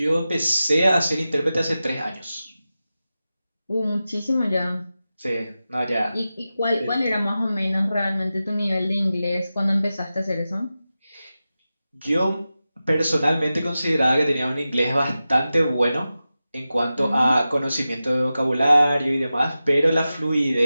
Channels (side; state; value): both; inverted; correlation -0.93